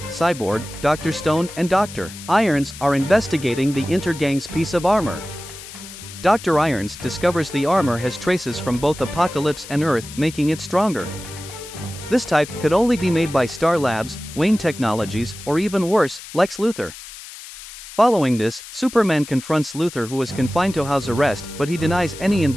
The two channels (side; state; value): left; noise; hiss, 14 dB below the sound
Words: Cyborg, Dr. Stone and Dr. Irons are investigating the Intergang's piece of armor. Dr. Irons discovers the armor has traces from both Apocalypse and Earth, making it stronger. This type could only be made by Star Labs, Wayne Technologies, or even worse, Lex Luthor. Following this, Superman confronts Luthor, who is confined to house arrest, but he denies any